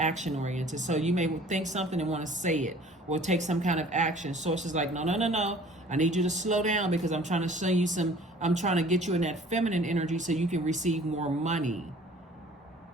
oriented. So you may think something and want to say it or take some kind of action. Source is like, no. I need you to slow down, because I'm trying to show you I'm trying to get you in that feminine energy so you can receive more money.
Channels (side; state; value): both; normal; correlation 0.50